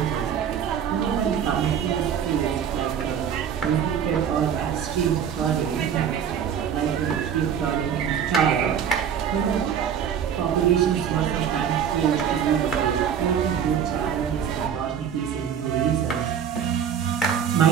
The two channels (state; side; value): quieter; left; 8.3 dB